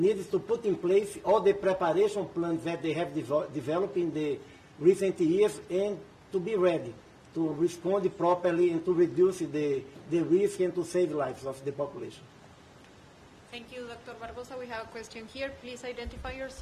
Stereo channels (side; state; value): both; identical; correlation 1.00